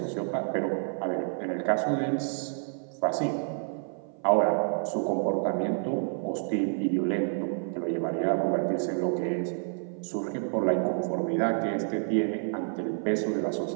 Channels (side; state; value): left; silent; 55 dB below the other